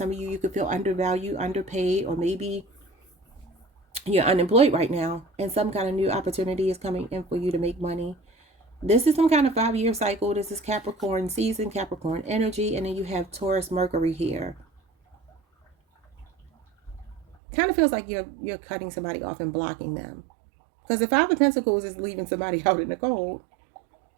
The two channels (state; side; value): drops out; left; at 17.4 s